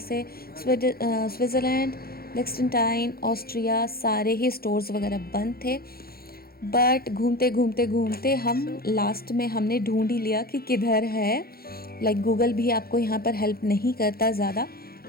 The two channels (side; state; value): right; late; 0.44 ms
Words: स्विट्ज़रलैंड, लिechtenstein, ऑस्ट्रिया सारे ही स्टोर्स वगैरह बंद थे। बट घूमते घूमते घूमते हम लास्ट में हमने ढूंढ ही लिया कि किधर है। लाइक गूगल भी आपको यहाँ पर हेल्प नहीं करता ज़्यादा,